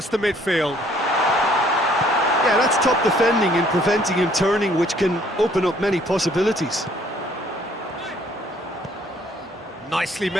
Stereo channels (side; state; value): both; normal; correlation 0.61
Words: the midfield. Yeah, that's top defending and preventing him turning, which can open up many possibilities. Nicely